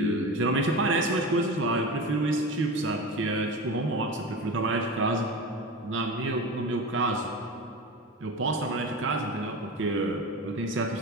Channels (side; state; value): both; normal; correlation 0.28